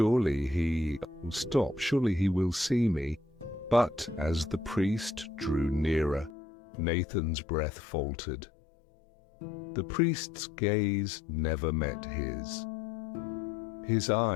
he will see me. But as the priest drew nearer, Nathan's breath faltered. The priest's gaze never met his. His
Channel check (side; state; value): right; drops out; at 6.4 s